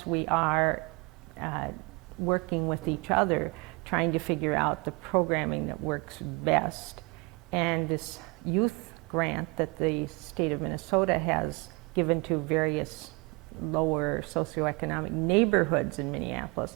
we are working with each other, trying to figure out the programming that works best. And this youth grant that the state of Minnesota has given to various lower socioeconomic neighborhoods in Minneapolis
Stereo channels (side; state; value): left; quieter; 27.4 dB